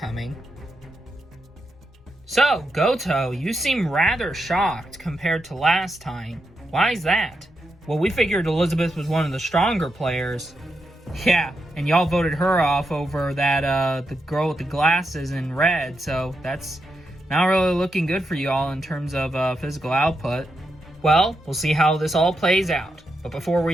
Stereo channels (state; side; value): normal; both; correlation 0.85